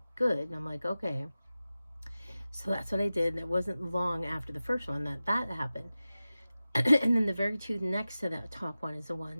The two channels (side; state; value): both; inverted; correlation -0.95